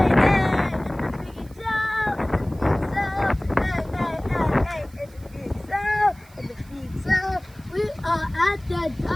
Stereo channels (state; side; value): noise; right; hiss, 27 dB below the sound